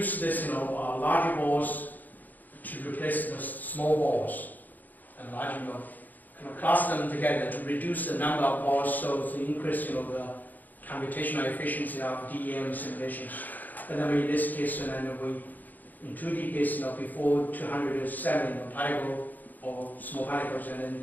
this, large balls to replace the small balls, and large, kind of cluster them together to reduce the number of balls, so to increase, the computational efficiency of DEM simulations. But then in this case, in 2D case, before 207 particle or small particles, and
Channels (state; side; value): late; right; 0.084 ms